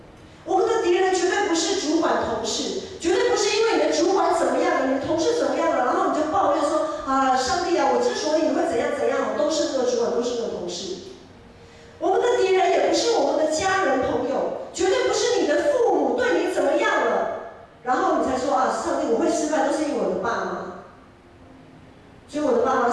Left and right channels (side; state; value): both; identical; correlation 1.00